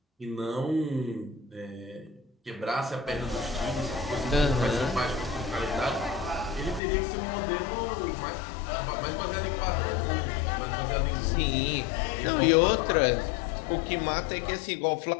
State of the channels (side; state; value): right; drops out; at 6.8 s